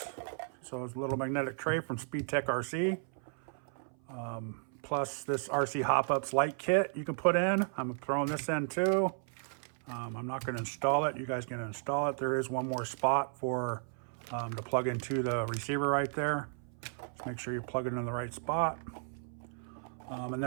So it's a little magnetic tray from SpeedTek RC. Plus this RC Hop Ups light kit you can put in. I'm throwing this in too. I'm not going to install it. You guys can install it. There is one more spot for to plug into the receiver right there. Just make sure you plug it in the right spot. And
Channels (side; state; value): left; silent; 55 dB below the other